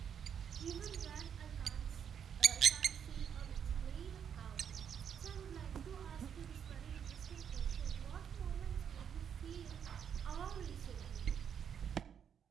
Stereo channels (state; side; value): quieter; left; 8.0 dB